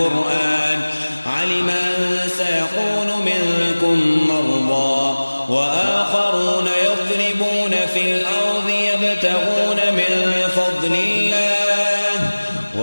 علم أن سيكون منكم مرضى وآخرون يضربون في الأرض يبتغون من فضل الله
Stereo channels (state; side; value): inverted; both; correlation -1.00